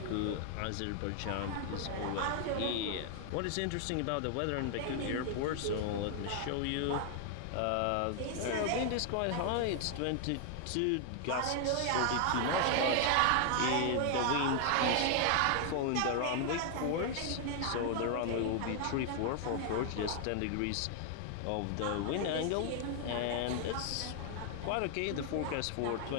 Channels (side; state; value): both; different; correlation 0.00